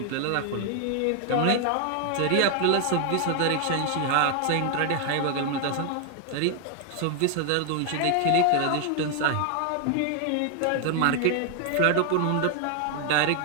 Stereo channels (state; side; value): different; both; correlation 0.00